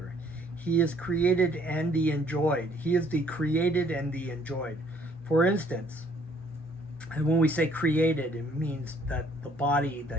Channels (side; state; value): both; normal; correlation 0.62